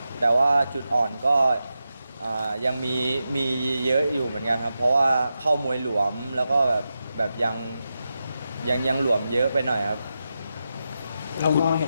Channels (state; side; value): inverted; both; correlation -0.89